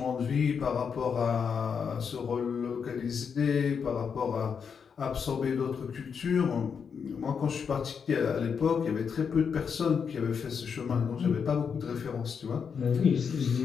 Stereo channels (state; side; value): quieter; right; 6.5 dB